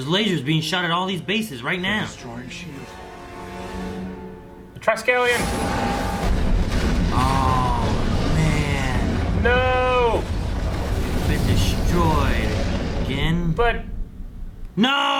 lasers being shot at all these bases right now. Destroying S.h.i.e.L.D. The Triskelion! Oh, man. No! Been destroyed. Again? But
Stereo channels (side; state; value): both; identical; correlation 1.00